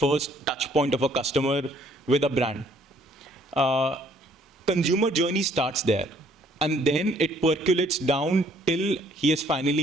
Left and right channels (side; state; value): both; normal; correlation 0.63